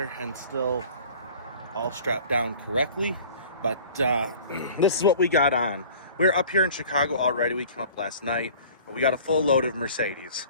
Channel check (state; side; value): inverted; both; correlation -0.46